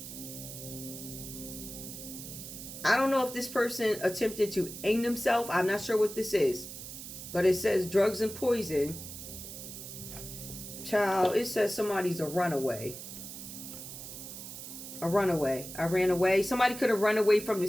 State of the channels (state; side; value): noise; right; hiss, 11 dB below the sound